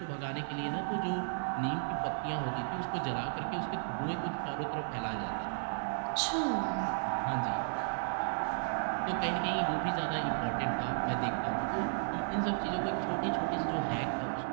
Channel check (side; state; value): left; silent; 55 dB below the other